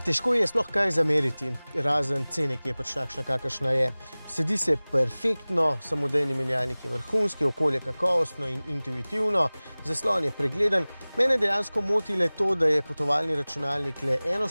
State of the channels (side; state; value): both; inverted; correlation -0.99